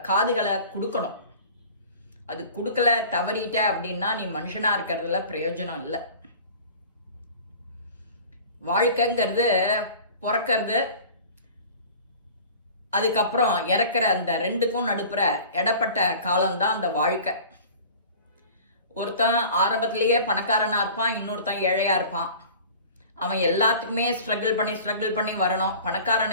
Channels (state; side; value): inverted; both; correlation -0.42